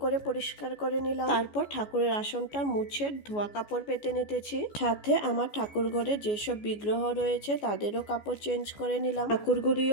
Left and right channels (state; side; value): late; right; 14 ms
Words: করে পরিষ্কার করে নিলাম, তারপর ঠাকুরের আসনটা মুছে ধোয়া কাপড় পেতে নিতেছি। সাথে আমার ঠাকুর ঘরে যেসব বিগ্রহ রয়েছে তাদেরও কাপড় চেঞ্জ করে নিলাম।